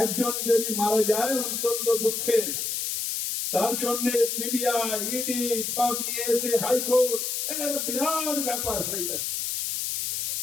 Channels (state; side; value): noise; left; hiss, 2 dB below the sound